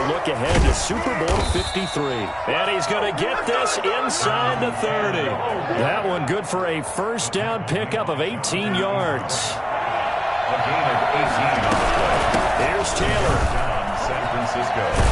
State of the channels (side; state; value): both; identical; correlation 1.00